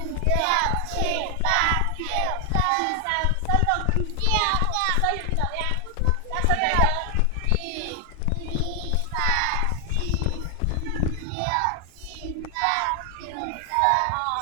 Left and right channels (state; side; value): different; both; correlation 0.00